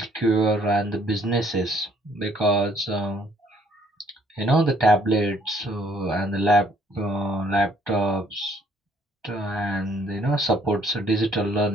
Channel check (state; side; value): normal; both; correlation 0.63